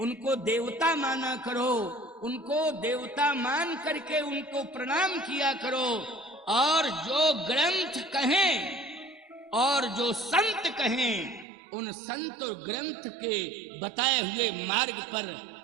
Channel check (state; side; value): drops out; left; at 11.5 s